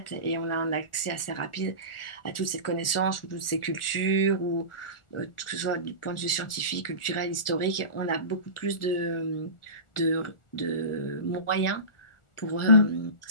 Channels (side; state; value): right; late; 1.4 ms